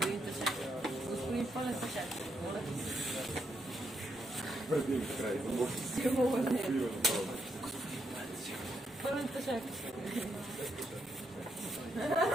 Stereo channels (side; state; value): both; normal; correlation 0.79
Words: Господин Пълен Сашак. Пълен Сашак.